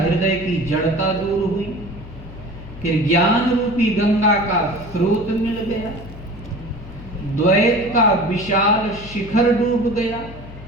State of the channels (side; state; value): left; noise; hum, 15 dB below the sound